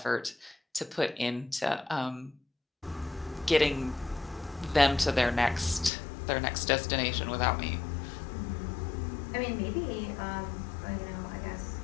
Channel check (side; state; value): right; drops out; at 5.9 s